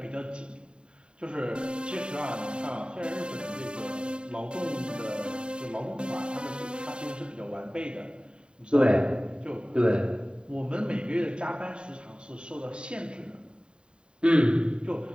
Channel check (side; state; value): left; late; 0.051 ms